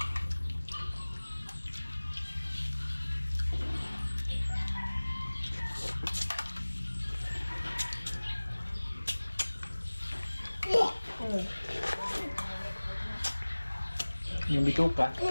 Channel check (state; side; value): inverted; both; correlation -1.00